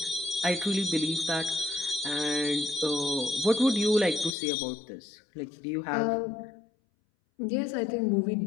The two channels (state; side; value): drops out; right; at 4.4 s